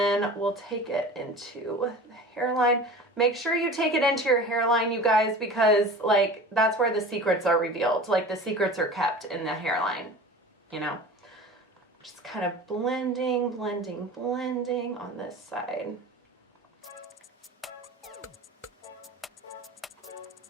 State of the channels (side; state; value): both; normal; correlation 0.37